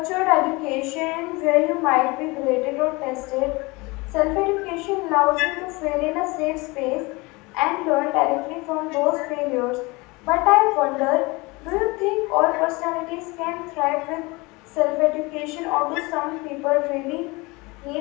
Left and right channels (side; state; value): right; quieter; 24.7 dB